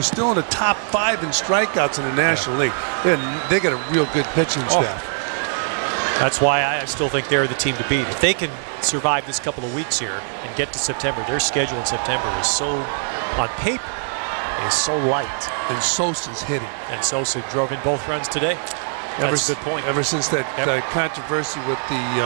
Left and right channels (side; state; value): left; silent; digital silence